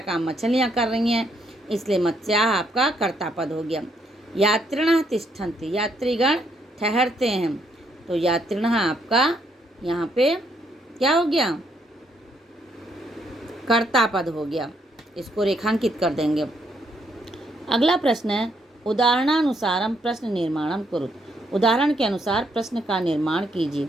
काम मछलियाँ कर रही हैं, इसलिए मत्स्याः आपका कर्ता पद हो गया। यात्रिणः तिष्ठन्ति, यात्रीगण ठहरते हैं, तो यात्रिणः आपका यहाँ पे क्या हो गया? कर्ता पद हो गया। इसको रेखांकित कर देंगे। अगला प्रश्न है उदाहरणानुसारम प्रश्न निर्माणम कुरुत। उदाहरण के अनुसार प्रश्न का निर्माण कीजिए।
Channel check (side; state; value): both; normal; correlation 0.73